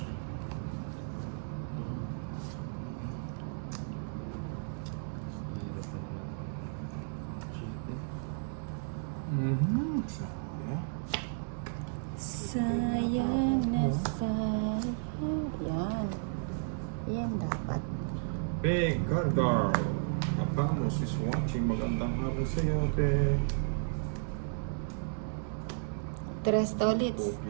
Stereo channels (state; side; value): silent; left; digital silence